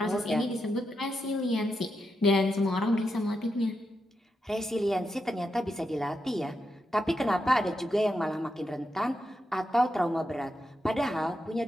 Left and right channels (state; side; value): normal; both; correlation 0.85